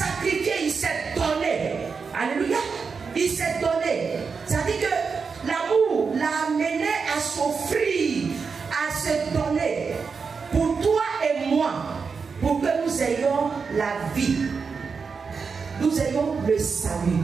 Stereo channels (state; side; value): quieter; left; 5.3 dB